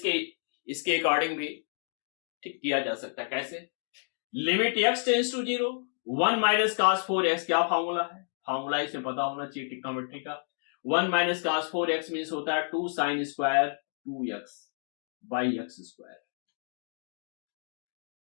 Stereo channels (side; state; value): right; silent; digital silence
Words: अकॉर्डिंग भी ठीक किया जा सकता है। कैसे? Limit x tends to 0 1 minus cos 4x, क्या फॉर्मूला है, फॉर्मूला इसे पता होना चाहिए ट्रिग्नोमेट्री का। 1 माइनस कास 4x मीन्स होता है 2 sign square 2x by x square.